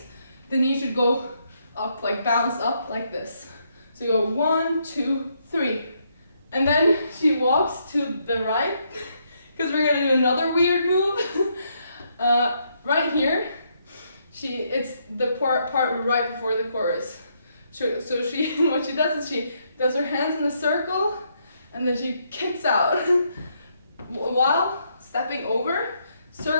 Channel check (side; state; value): both; inverted; correlation -0.75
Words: the knee should go up, like bounce up like this. So you go 1, 2, 3. And then she walks to the right, because we're gonna do another weird move. Right here, it's the part right before the chorus. So what she does is she does her hands in a circle, and then she kicks out while stepping over,